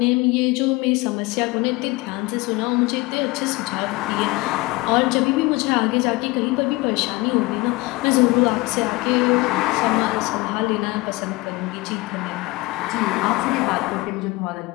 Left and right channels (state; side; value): quieter; right; 22.4 dB